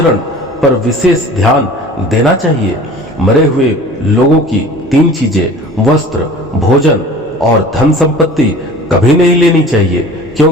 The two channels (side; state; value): both; normal; correlation 0.43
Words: पर विशेष ध्यान देना चाहिए। मरे हुए लोगों की 3 चीजें वस्त्र, भोजन और धन संपत्ति कभी नहीं लेनी चाहिए,